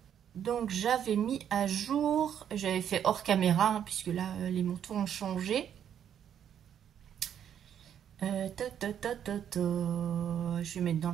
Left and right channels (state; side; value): quieter; left; 9.2 dB